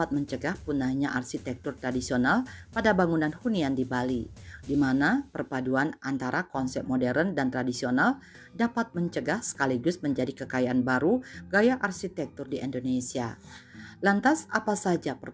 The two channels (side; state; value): both; identical; correlation 1.00